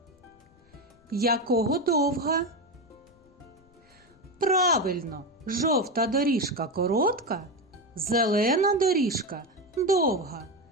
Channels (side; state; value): left; noise; rumble, 30 dB below the sound